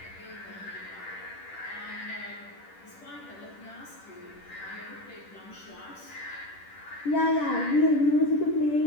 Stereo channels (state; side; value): late; right; 10 ms